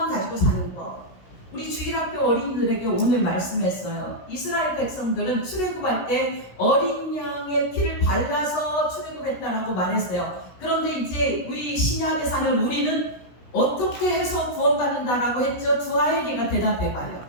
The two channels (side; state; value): right; late; 17 ms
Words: 가지고 사는 것. 우리 주일학교 어린이들에게 오늘 말씀했어요. 이스라엘 백성들은 출애굽할 때 어린 양의 피를 발라서 출애굽했다라고 말했어요. 그런데 이제 우리 신약에 사는 우리는 어떻게 해서 구원받는다라고 했죠? 두아엘이가 대답해봐요.